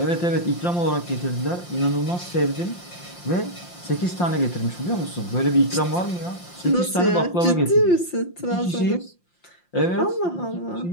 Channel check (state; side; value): late; right; 5.7 ms